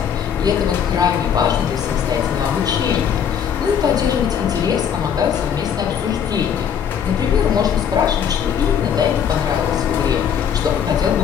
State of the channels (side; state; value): right; quieter; 8.1 dB